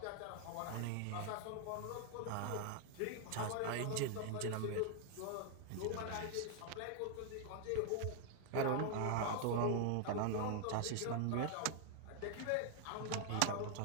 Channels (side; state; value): both; different; correlation 0.00